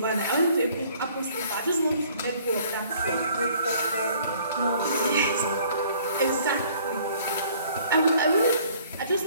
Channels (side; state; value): both; inverted; correlation -0.57